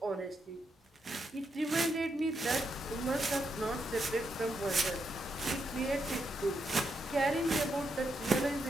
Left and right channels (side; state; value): both; normal; correlation 0.82